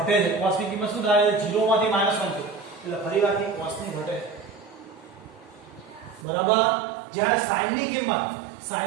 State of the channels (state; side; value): drops out; left; at 6.2 s